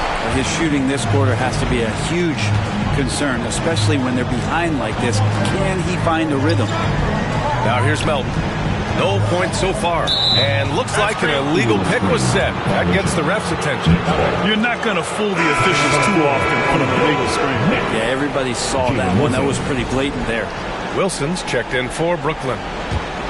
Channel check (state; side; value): identical; both; correlation 1.00